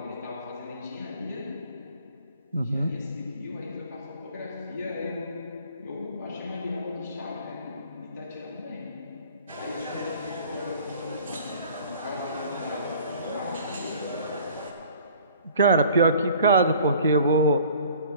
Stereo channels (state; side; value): inverted; both; correlation -0.50